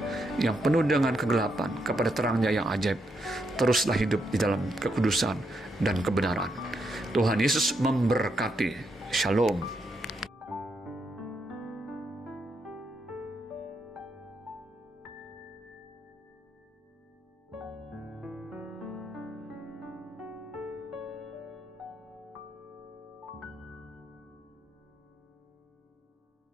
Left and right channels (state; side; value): normal; both; correlation 0.80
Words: yang penuh dengan kegelapan kepada terangnya yang ajaib, teruslah hidup di dalam kekudusan dan kebenaran. Tuhan Yesus memberkati. Shalom.